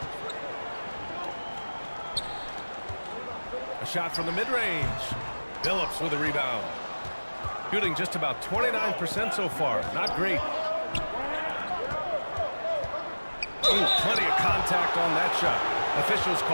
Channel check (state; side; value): inverted; both; correlation -1.00